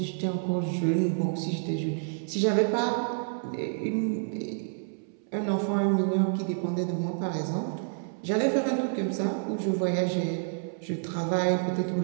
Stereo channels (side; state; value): left; silent; 59 dB below the other